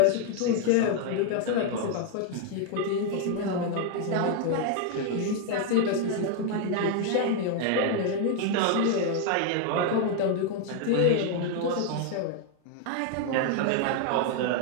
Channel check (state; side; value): different; both; correlation 0.00